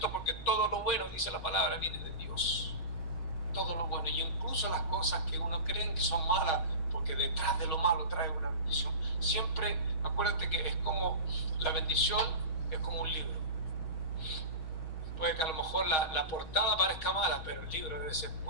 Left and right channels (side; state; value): right; late; 6.3 ms